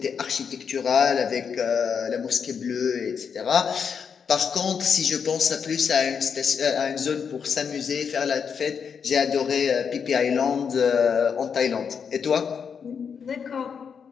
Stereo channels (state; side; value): quieter; right; 6.6 dB